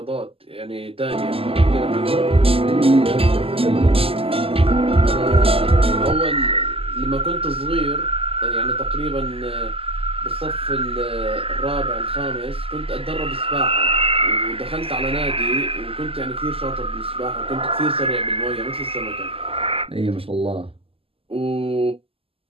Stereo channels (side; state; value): left; late; 0.27 ms